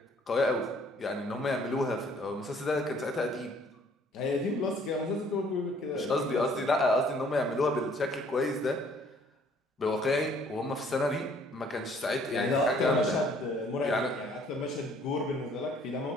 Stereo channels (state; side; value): normal; both; correlation 0.60